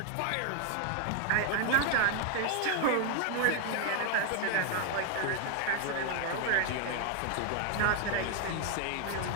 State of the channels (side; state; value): both; different; correlation 0.00